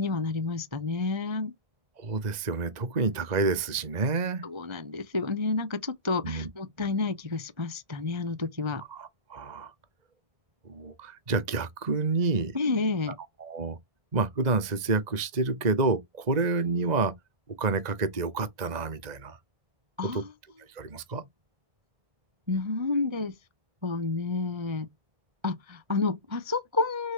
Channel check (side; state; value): left; late; 2.0 ms